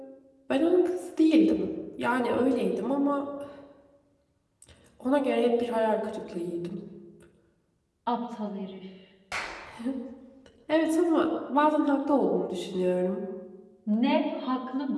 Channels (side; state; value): both; identical; correlation 1.00